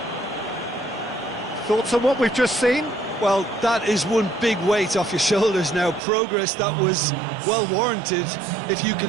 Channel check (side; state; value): left; drops out; at 6.0 s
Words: Thoughts on what we've just seen? Well, that is one big weight off your shoulders now. Progress that was well warranted if you